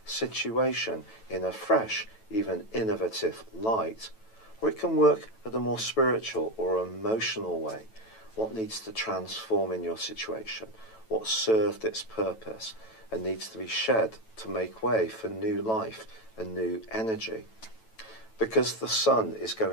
situation in a fresh, even innovative light. Or it can work at a more spiritual or emotional way. What needs to transform in your situation? What served its purpose and needs to be shed to make way for new life and new energy? Because the Sun is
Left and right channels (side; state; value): right; late; 9.1 ms